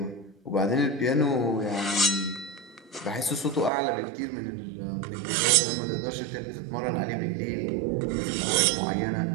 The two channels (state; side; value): drops out; left; at 3.7 s